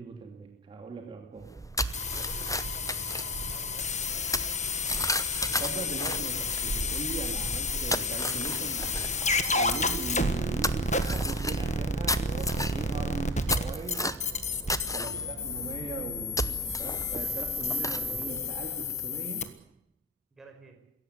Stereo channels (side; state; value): both; normal; correlation 0.26